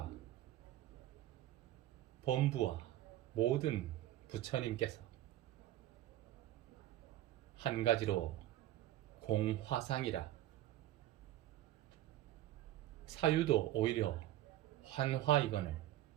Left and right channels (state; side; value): quieter; left; 13.9 dB